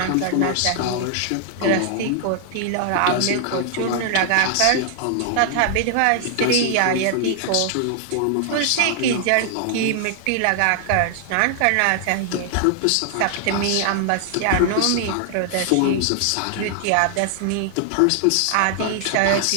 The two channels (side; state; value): both; different; correlation 0.00